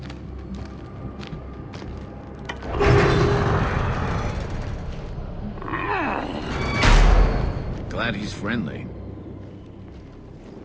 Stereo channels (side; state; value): both; identical; correlation 1.00